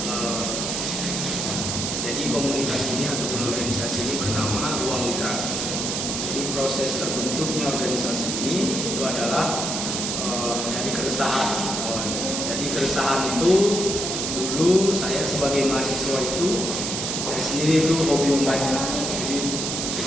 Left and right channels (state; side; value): noise; right; hiss, 2 dB below the sound